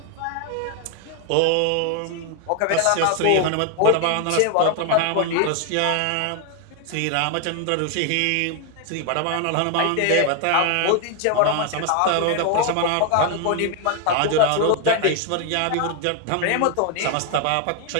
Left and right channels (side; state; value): both; different; correlation 0.00